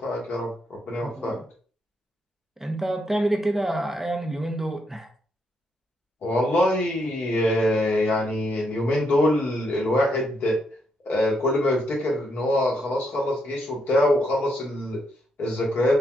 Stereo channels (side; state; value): both; normal; correlation 0.78